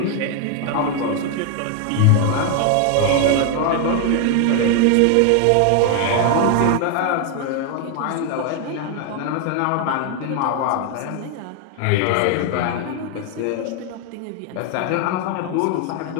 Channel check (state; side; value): different; both; correlation 0.00